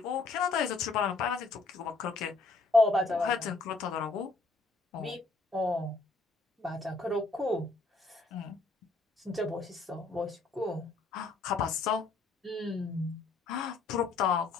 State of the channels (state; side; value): quieter; right; 3.7 dB